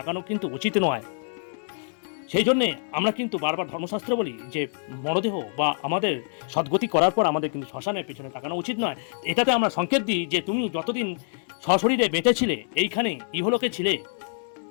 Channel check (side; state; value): right; silent; digital silence